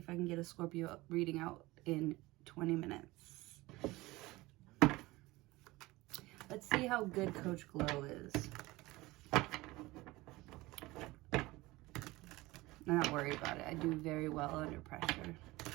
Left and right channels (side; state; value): left; quieter; 20.3 dB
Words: I can get a Scorpio reading out in 20 minutes. Let's see how good Coach Glow is. I'm not worried about it. I do very well under pressure.